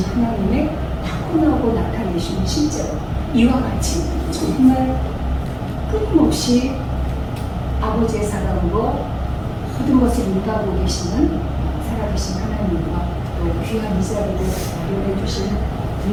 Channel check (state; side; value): identical; both; correlation 1.00